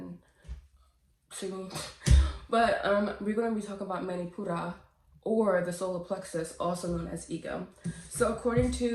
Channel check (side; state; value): both; identical; correlation 1.00